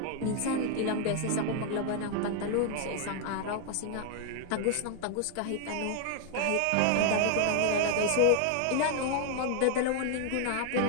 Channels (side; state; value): both; different; correlation 0.00